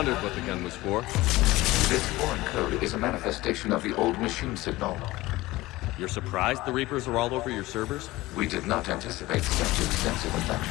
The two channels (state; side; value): quieter; right; 18.8 dB